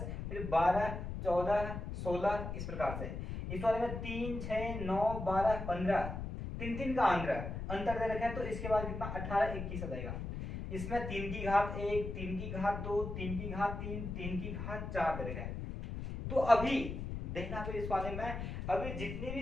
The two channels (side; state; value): left; noise; rumble, 6 dB below the sound